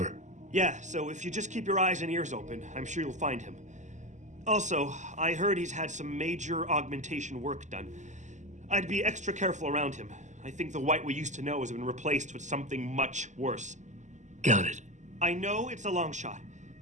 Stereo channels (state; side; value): late; left; 0.34 ms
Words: Yeah, so if you just keep your eyes and ears open, I'm sure you'll find him. Also, I heard he's had some major augmentation work done. I'd be extra careful around him. I think the White we used to know has been replaced with something much worse. Got it. I know it's a long shot,